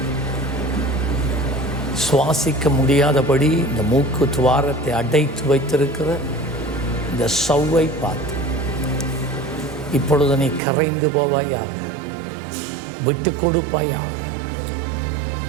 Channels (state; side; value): drops out; left; at 10.6 s